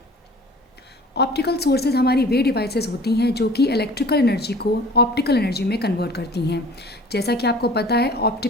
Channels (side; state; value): both; normal; correlation 0.46